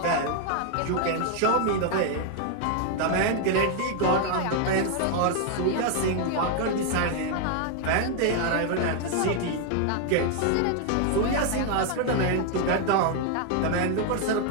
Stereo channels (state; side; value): different; both; correlation 0.00